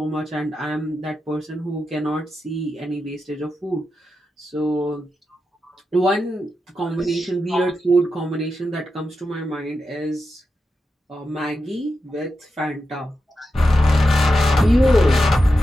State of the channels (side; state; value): both; normal; correlation 0.89